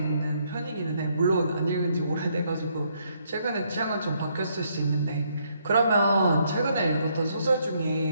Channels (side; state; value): both; inverted; correlation -0.72